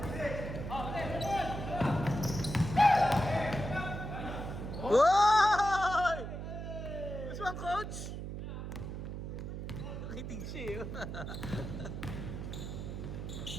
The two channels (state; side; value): noise; right; hum, 6 dB below the sound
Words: Woy! Gusto mo ang coach? Nakitig siya eh.